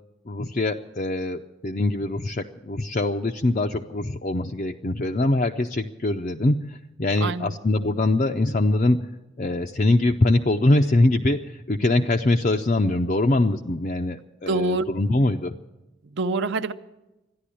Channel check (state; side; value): normal; both; correlation 0.73